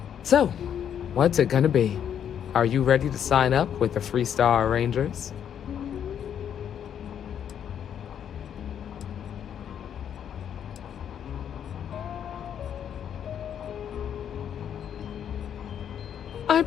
So, what's it gonna be? Are you ready to sign up with the Freestar Rangers? I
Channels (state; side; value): quieter; right; 9.0 dB